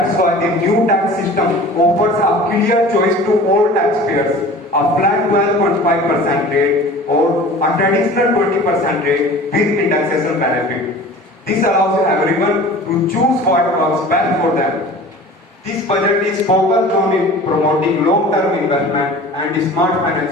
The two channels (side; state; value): both; normal; correlation 0.41